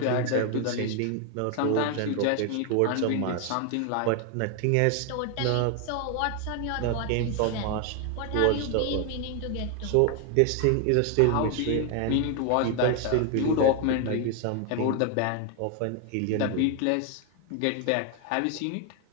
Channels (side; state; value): both; different; correlation 0.01